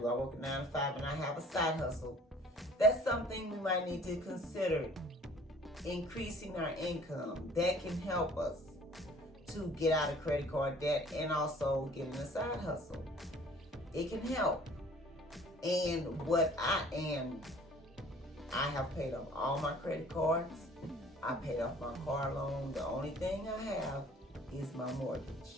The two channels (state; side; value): normal; both; correlation 0.52